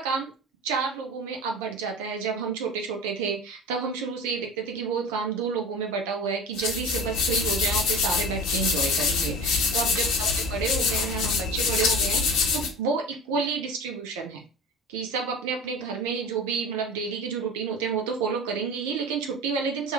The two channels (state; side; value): normal; both; correlation 0.35